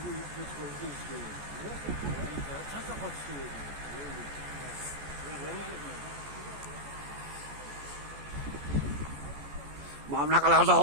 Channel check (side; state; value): left; late; 14 ms